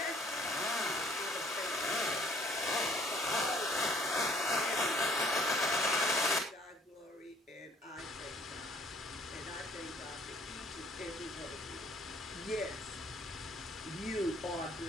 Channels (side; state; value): both; normal; correlation 0.60